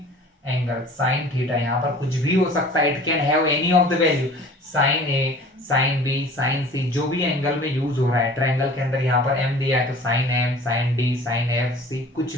एंगल, साइन थीटा। यहाँ पर कुछ भी हो सकता है, it can have any of the value, sine A, sine B, sine C, जो भी एंगल में यूज हो रहा है। ट्रायंगल के अंदर यहाँ पर एम दिया है तो sine M, sine D, sine F C, कुछ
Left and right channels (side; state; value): both; normal; correlation 0.45